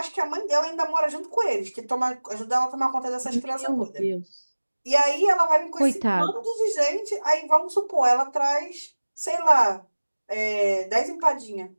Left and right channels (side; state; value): both; inverted; correlation -1.00